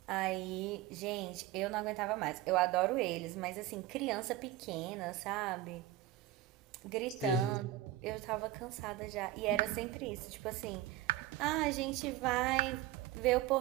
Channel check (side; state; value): left; quieter; 13.8 dB